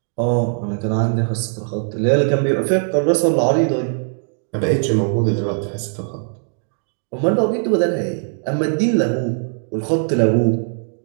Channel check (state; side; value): silent; left; digital silence